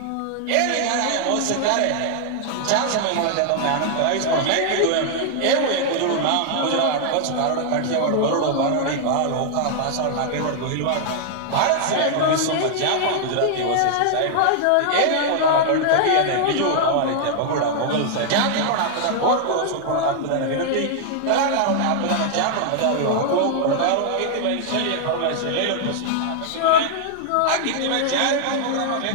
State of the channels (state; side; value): different; both; correlation 0.00